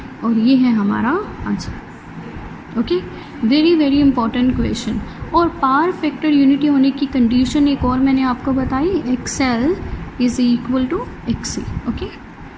और ये है हमारा answer. Okay, very very important question. और पावर फैक्टर यूनिटी होने की कंडीशन एक और मैंने आपको बताई, XL is equal to XC। Okay,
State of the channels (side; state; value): both; identical; correlation 1.00